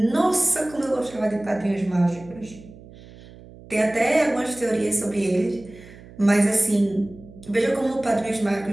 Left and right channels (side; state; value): right; noise; hum, 20 dB below the sound